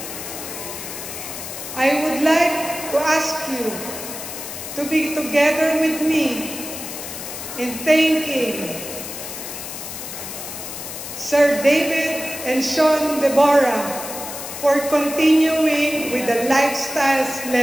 I would like to ask you to be together with me in thanking Sir David and Sean Deborah for continuing with the Lifestyles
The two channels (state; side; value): noise; left; hiss, 9 dB below the sound